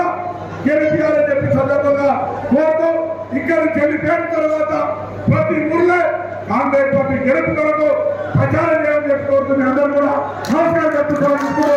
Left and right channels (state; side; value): identical; both; correlation 1.00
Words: గెలిపించాలని చెప్పి సందర్భంగా కోరుతూ ఇక్కడ చెల్లిపోయిన తర్వాత ప్రతి ఊర్లో కాంగ్రెస్ పార్టీ గెలుపు కొరకు ప్రచారం చేయాలని చెప్పి కోరుతుంది అందరూ కూడా నమస్కారం